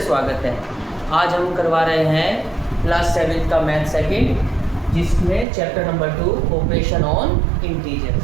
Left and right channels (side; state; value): left; drops out; at 5.5 s